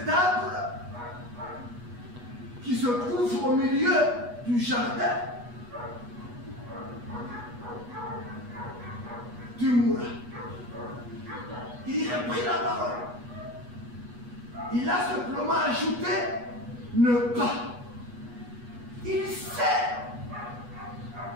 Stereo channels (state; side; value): late; left; 8.3 ms